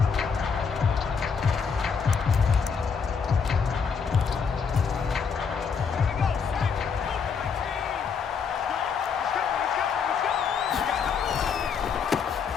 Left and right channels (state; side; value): quieter; right; 6.1 dB